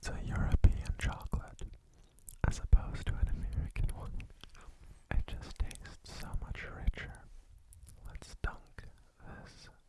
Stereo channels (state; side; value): identical; both; correlation 1.00